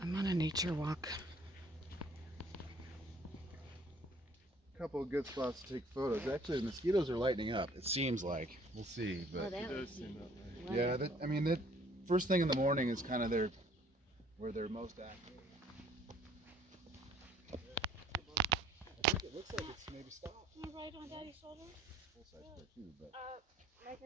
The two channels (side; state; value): both; normal; correlation 0.58